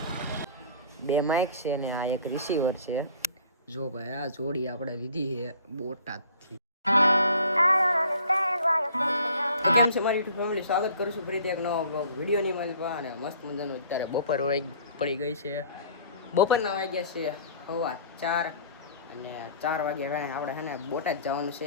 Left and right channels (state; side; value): inverted; both; correlation -0.50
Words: બે માઇક છે ને આ એક રિસીવર છે. જો ભાઈ આ જોડી આપણે લીધી છે બોટાદથી. કેમ છે મારી યુટ્યુબ ફેમિલી, સ્વાગત કરું છું ફરીથી એક નવા બ્લોગ વિડીયોની માલિકા. અને મસ્ત મજાનું અત્યારે બપોર પડી ગઈ છે. બપોરના વાગ્યા છે 4:15 અને 4 વાગ્યા કાંઈ આપણે છે ને બોટાદ જવાનું